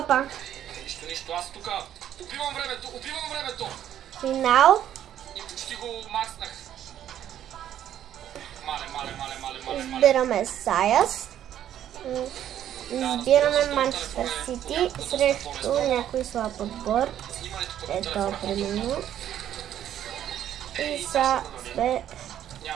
Опа. Нищо, аз тук убивам времето. Финал. И почти го макснах. Мале. Избираме Саяс. Избираме Манчестър Сити срещу някой слаб отбор. Ето, примерно. И са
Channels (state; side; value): quieter; left; 10.9 dB